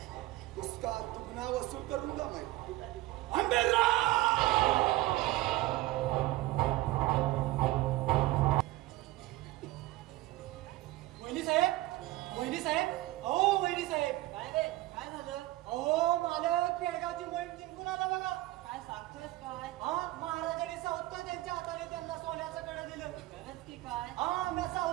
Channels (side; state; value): left; quieter; 17.9 dB